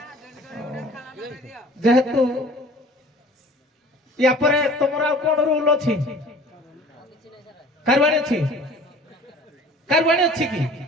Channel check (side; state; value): both; normal; correlation 0.48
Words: ଯେହେତୁ ୟା ପରେ ତମର ଆଉ କଣ ରୁଲ ଅଛି କାରବାଣୀ ଅଛି କାରବାଣୀ ଅଛି କି